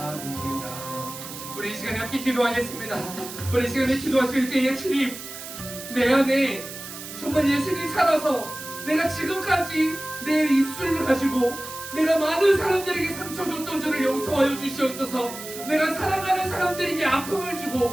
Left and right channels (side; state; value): right; noise; hiss, 11 dB below the sound